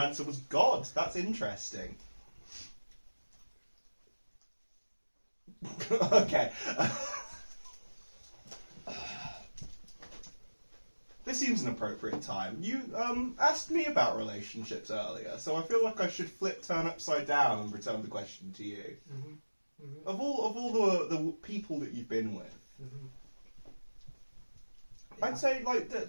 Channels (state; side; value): inverted; both; correlation -1.00